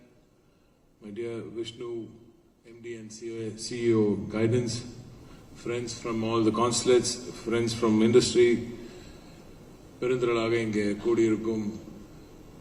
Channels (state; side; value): identical; both; correlation 1.00